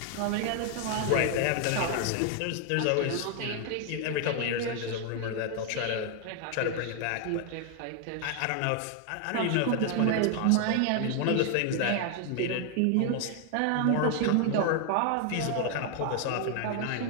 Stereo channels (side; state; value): both; different; correlation 0.00